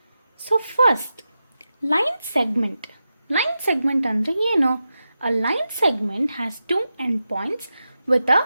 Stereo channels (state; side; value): inverted; both; correlation -0.90